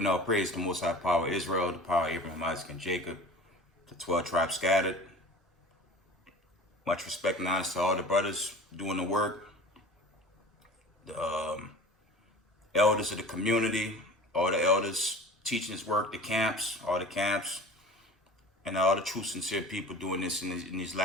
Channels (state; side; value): normal; both; correlation 0.40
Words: all praise to the Most High Power of Israel, the power of Abraham, Isaac, and Jacob, the 12 tribes scattered. Much respect and honor to all the brothers doing the work, the elders of the community, all the elders teaching this work, the camps, all the camps, and all the true sincere people doing this in these